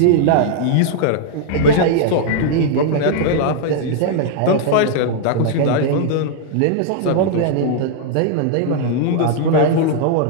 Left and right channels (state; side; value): different; both; correlation -0.01